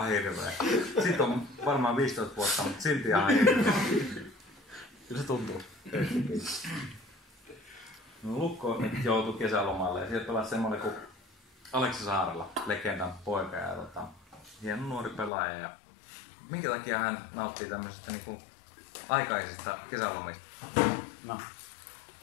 hirveä. Sitten on varmaan 15 vuotta, mutta silti ihan hirveä. Kyllä se tuntuu. No, Lukko nyt joutui kesälomalle ja sieltä pelasi semmoinen kuin Aleksi Saarella, legendan poika ja hieno nuori pelaaja. Ja minkä takia hän nauttii tämmöisestä niinku aikaisista kesälomista? No.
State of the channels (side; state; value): right; drops out; at 15.3 s